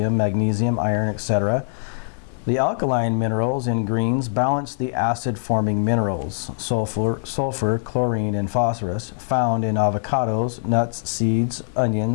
magnesium, iron, etc. The alkaline minerals in greens balance the acid-forming minerals, sulfur, chlorine, and phosphorus, found in avocados, nuts, seeds,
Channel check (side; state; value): right; silent; digital silence